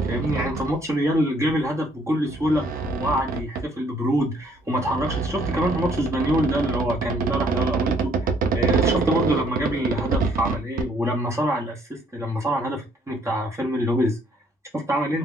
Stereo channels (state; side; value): normal; both; correlation 0.64